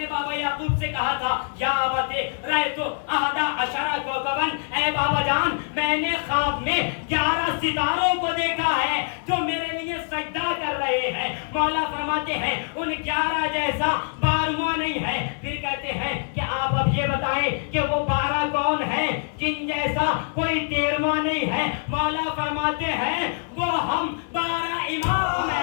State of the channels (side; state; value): right; silent; digital silence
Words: بابا یعقوب سے کہا تھا یا ابتے رأیت احد عشر کوکبا, اے بابا جان میں نے خواب میں 11 ستاروں کو دیکھا ہے جو میرے لیے سجدہ کر رہے ہیں. مولا فرماتے ہیں ان 11 جیسا 12واں نہیں ہے. پھر کہتے ہیں کہ آپ اب یہ بتائیں کہ وہ 12 کون ہے جن جیسا کوئی 13واں نہیں ہے. مولا فرماتے ہیں وہ ہم 12 امام